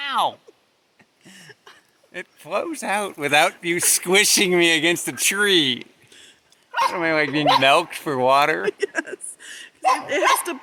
It flows out without you squishing me against a tree. What am I, like being milked for water? Yes. It has to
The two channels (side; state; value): both; identical; correlation 1.00